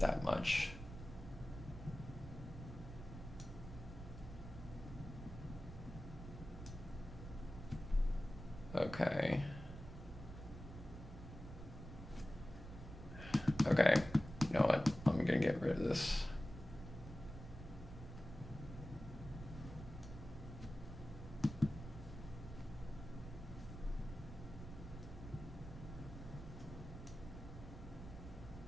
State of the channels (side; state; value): right; noise; rumble, 11 dB below the sound